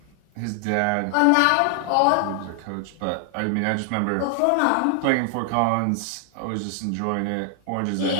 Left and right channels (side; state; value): both; different; correlation 0.00